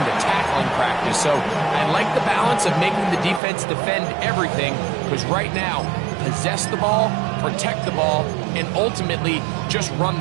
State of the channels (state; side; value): drops out; left; at 3.4 s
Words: tackling practice. So I like the balance of making the defense defend everything, because right now, possess the ball, protect the ball, and ultimately just run